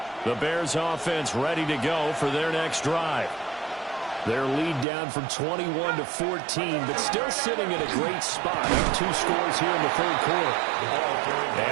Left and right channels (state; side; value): drops out; left; at 4.9 s